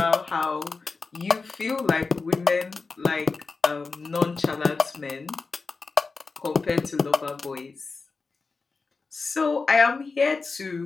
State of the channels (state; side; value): quieter; right; 4.3 dB